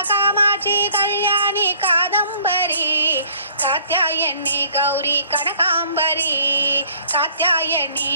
कामाक्षी कल्याणी कादंबरी कात्यायनी गौरी कनकांबरी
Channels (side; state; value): both; inverted; correlation -0.57